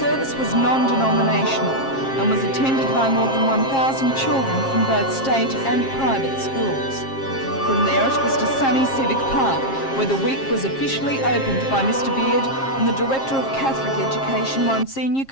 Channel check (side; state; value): right; late; 7.5 ms